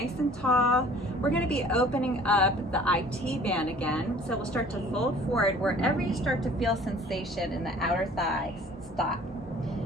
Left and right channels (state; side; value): normal; both; correlation 0.50